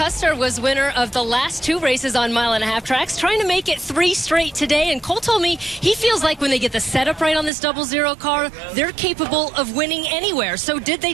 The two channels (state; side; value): drops out; left; at 7.5 s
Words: was winner of the last two races on mile-and-a-half tracks, trying to make it 3 straight today. And Cole told me he feels like when they get the setup right on this 00 car, they're capable of winning anywhere. So did they